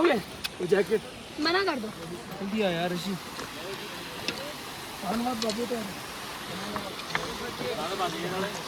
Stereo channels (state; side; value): identical; both; correlation 1.00